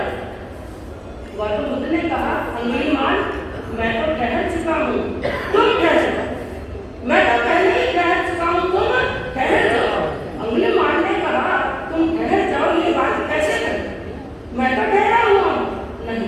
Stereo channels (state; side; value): identical; both; correlation 1.00